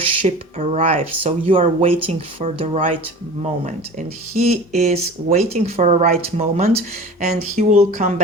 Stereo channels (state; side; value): normal; both; correlation 0.38